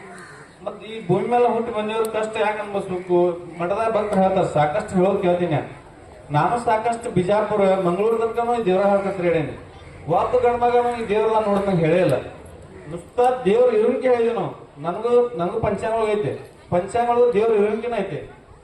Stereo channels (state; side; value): identical; both; correlation 1.00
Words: ಮತ್ ಈ ಭೂಮಿ ಮೇಲೆ ಹುಟ್ಟಿ ಬಂದಿವ್ರ ಕಷ್ಟ ಯಾಕೆ ಅನ್ಬಸ್ಬೇಕು. ಮಠದಾಗ ಭಕ್ತರು ಹೇಳ್ತಾರ, ಸಾಕಷ್ಟು ಹೇಳೋದು ಕೇಳ್ತೀನಿ. ನಾನು ಸಾಕಷ್ಟು ಬಿಜಾಪುರ ಮಂಗಳೂರು ತನಕ ದೇವ್ರ ಹಾಕತ್ರಿ ಹೇಳೇನಿ. ಒಬ್ಬ ಗಂಡ ಮಗನು ಈ ದೇವ್ರ ನೋಡ್ದಂಗೆ ಹೇಳೇ ಇಲ್ಲ. ನುಸ್ತ ದೇವ್ರ ಇರುವಿಕೆ ಹೇಳಿದ್ವಿ ನಾವು. ನನಗೂ ಪಂಚಾಂಗ ಐತೆ. ಪಂಚಾಂಗ ದೇವ್ರ ಇರುವಿಕೆನ ಐತೆ.